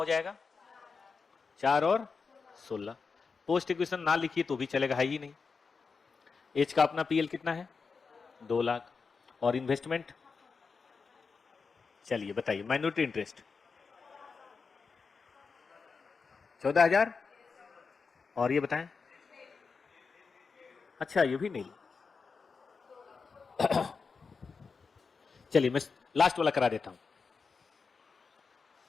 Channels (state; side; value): quieter; right; 5.0 dB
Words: जाएगा? 4 और 16। पोस्ट इक्विशन ना लिखिए तो भी चलेगा, है ही नहीं। एच का अपना पीएल कितना है? 2 लाख। और इन्वेस्टमेंट चलिए बताइए, माइनॉरिटी इंटरेस्ट 14,000। और ये बताएं, अच्छा ये भी नहीं। चलिए मैं लास्ट वाला करा देता हूं।